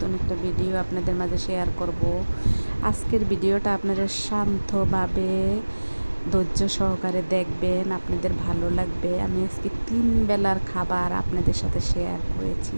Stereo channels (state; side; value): inverted; both; correlation -1.00